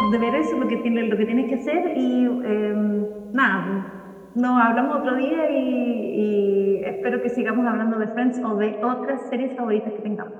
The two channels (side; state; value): both; identical; correlation 1.00